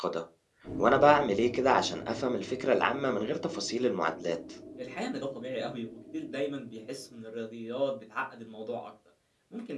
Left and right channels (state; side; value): identical; both; correlation 1.00